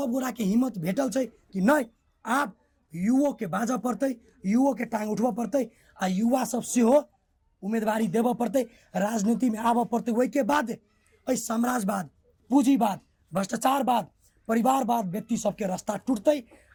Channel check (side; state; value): both; identical; correlation 1.00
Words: गोरा के हिम्मत भेटल छै कि नहीं, आब युवो के बाजा पड़ते, युवो के टांग उठवा पड़ते, आ युवा सब सेहो उम्मीदवारी देव पड़ते, राजनीति में आब पड़ते। वही के बाद साम्राज्यवाद, पूंजीवाद, भ्रष्टाचारवाद, परिवारवाद व्यक्ति सबके रास्ता टूटते,